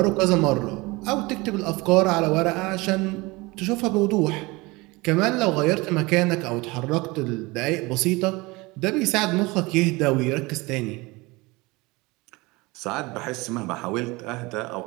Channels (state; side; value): quieter; left; 23.5 dB